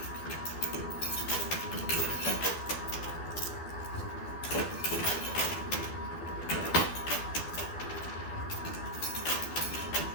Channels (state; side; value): late; right; 12 ms